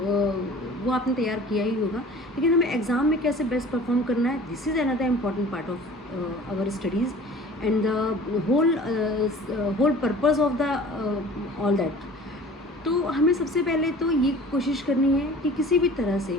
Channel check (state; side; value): normal; both; correlation 0.44